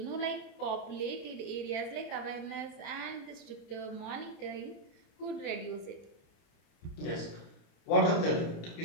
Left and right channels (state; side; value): late; right; 29 ms